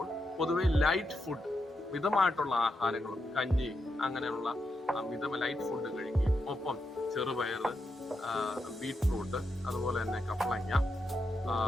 പൊതുവെ ലൈറ്റ് ഫുഡ്, മിതമായിട്ടുള്ള ആഹാരങ്ങളും കഞ്ഞി അങ്ങനെയുള്ള ലൈറ്റ് ഫുഡ് കഴിക്കുകയും ഒപ്പം ചെറുപയർ, ബീറ്റ്റൂട്ട്, അതുപോലെ തന്നെ കപ്പളങ്ങ,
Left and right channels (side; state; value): both; normal; correlation 0.84